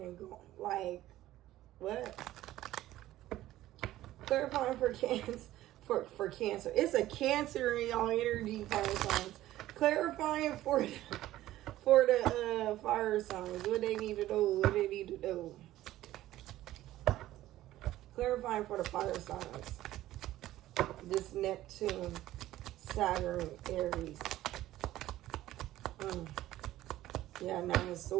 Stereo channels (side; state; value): left; quieter; 14.8 dB